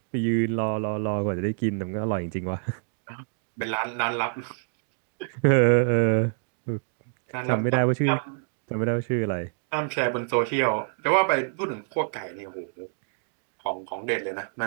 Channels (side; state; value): left; silent; digital silence